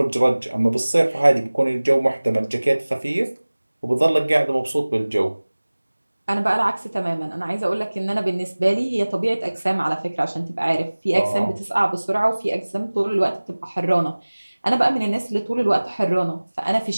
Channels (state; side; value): inverted; both; correlation -1.00